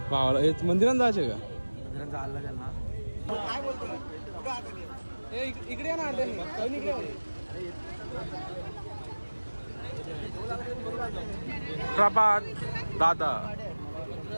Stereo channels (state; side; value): inverted; both; correlation -1.00